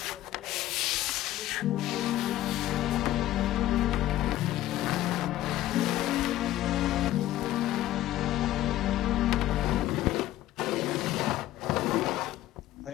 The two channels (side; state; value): right; quieter; 14.4 dB